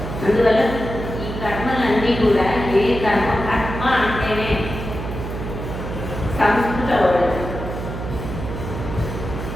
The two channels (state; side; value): noise; right; hum, 7 dB below the sound